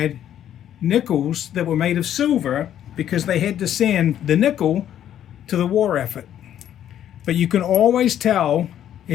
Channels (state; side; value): quieter; right; 10.7 dB